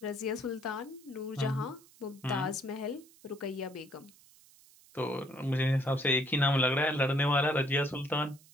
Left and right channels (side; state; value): right; noise; hiss, 26 dB below the sound